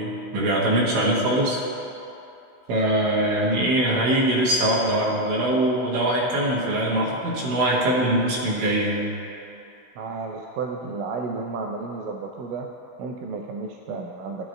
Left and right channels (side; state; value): left; late; 16 ms